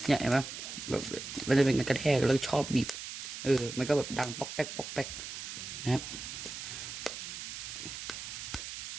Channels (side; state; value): right; noise; hiss, 8 dB below the sound